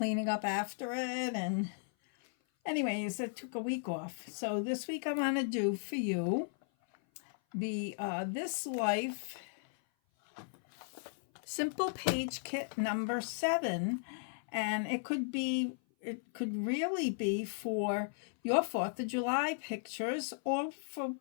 up after it. And, anyways, I took a week off. So, this week I'm going to do for you the This Life Simple Page Kit number 7. And it could really be for your 4th of July pictures, or for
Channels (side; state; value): right; silent; 54 dB below the other